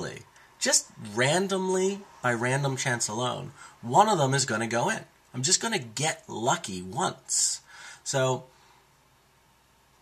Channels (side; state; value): both; identical; correlation 1.00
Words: just randomly, by random chance alone, one of them is going to go in. I'm just going to get lucky once. So